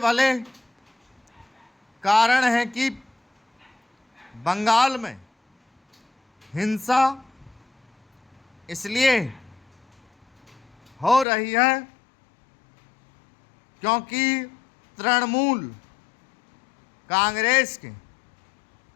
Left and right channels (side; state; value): right; drops out; at 11.2 s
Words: कारण है कि बंगाल में हिंसा इसलिए हो रही है क्योंकि तृणमूल कांग्रेस के